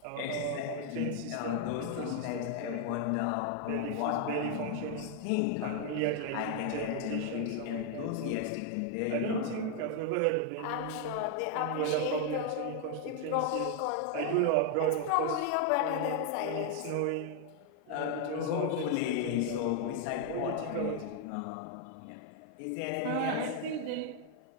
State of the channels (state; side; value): different; both; correlation 0.00